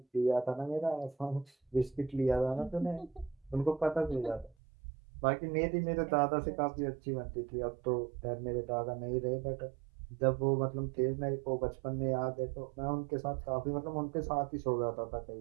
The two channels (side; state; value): left; drops out; at 4.5 s